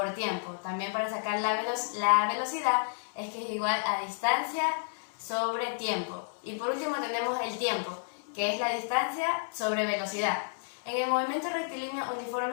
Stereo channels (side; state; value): right; silent; digital silence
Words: tiempo. También para sacar la velocidad es que es igual a distancia sobre tiempo. Y por último tenemos el tiempo, que es la distancia sobre velocidad. En el movimiento rectilíneo